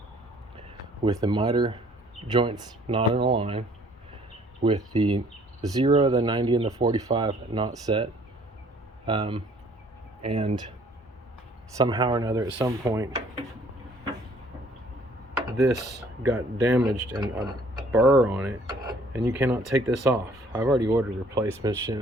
with the miter joints not in a line, with the 0, the 90, and the 45 not set, and somehow or another at some point this got damaged and a burr on it, and you cannot take this off. I've already ordered replacement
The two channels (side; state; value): both; normal; correlation 0.58